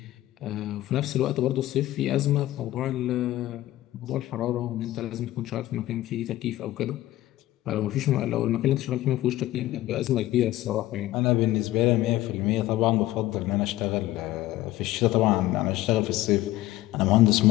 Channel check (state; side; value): quieter; right; 15.7 dB